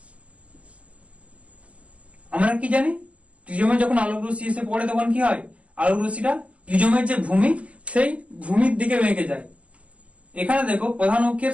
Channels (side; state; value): left; late; 0.065 ms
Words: আমরা কি জানি, প্রিজমে যখন আলোক রশ্মি এসে পড়ে তখন কি হয়, আলোক রশ্মিটা প্রিজমের যে ভূমি সেই ভূমির দিকে বেঁকে যায়। এখানে দেখো প্রধান